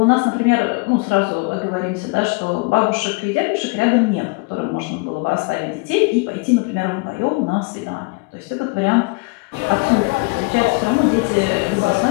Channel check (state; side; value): quieter; right; 29.2 dB